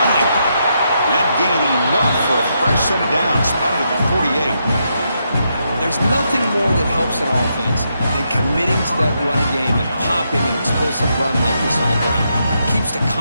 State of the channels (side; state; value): both; inverted; correlation -0.80